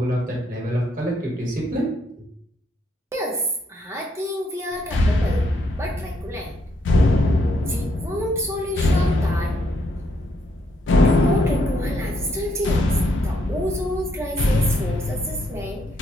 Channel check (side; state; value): both; normal; correlation 0.74